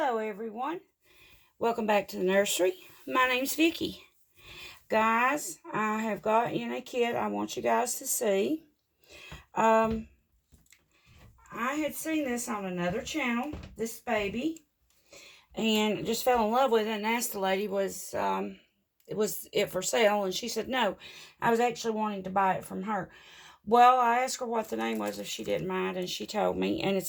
everyone. Welcome back to the nursery. My name's Vicky. Guys, I have got in a kit I want you guys to see. I had seen this on another channel, this baby, and just fell in love with it and asked the lady was it for sale, and she said no. I was actually wanting to buy it from her. Well, I asked her what the name was if she didn't mind, and she told me, and it's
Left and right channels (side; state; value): both; identical; correlation 1.00